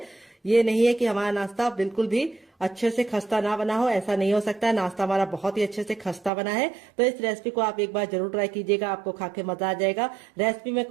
ये नहीं है कि हमारा नाश्ता बिल्कुल भी अच्छे से खस्ता ना बना हो, ऐसा नहीं हो सकता। नाश्ता हमारा बहुत ही अच्छे से खस्ता बना है। तो इस रेसिपी को आप एक बार जरूर ट्राई कीजिएगा, आपको खा के मजा आ जाएगा। रेसिपी में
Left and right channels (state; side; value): drops out; left; at 6.3 s